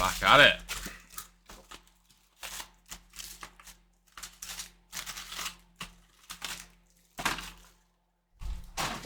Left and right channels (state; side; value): identical; both; correlation 1.00